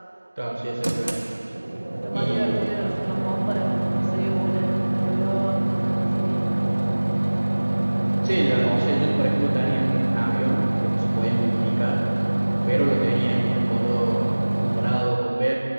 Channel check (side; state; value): both; inverted; correlation -1.00